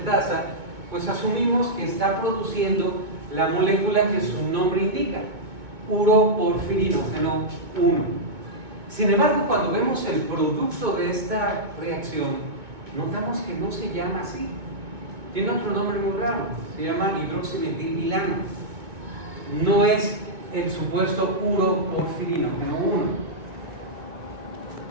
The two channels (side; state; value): left; late; 2.2 ms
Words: pues asumimos que está produciendo la molécula que su nombre indica, uroporfirinógeno 1. Sin embargo, cuando vemos el producto de esta reacción, notamos que no se llama así. Tiene otro nombre muy raro, se llama hidroximetilbilano. No es el supuesto uroporfirinógeno 1.